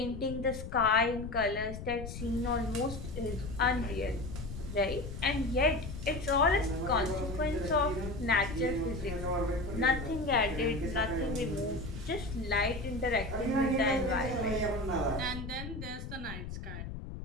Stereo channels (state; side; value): noise; left; rumble, 8 dB below the sound